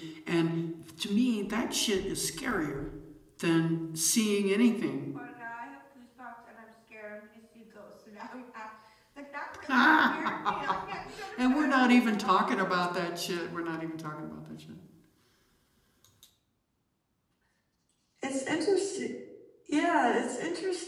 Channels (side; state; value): both; identical; correlation 1.00